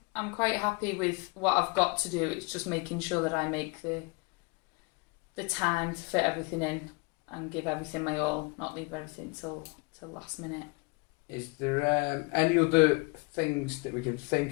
I'm quite happy with what I've got to do. It's just making sure that I make the time to fit everything in and give everything my all, not leave everything till last minute. Is there any other things that we can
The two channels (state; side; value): quieter; right; 29.1 dB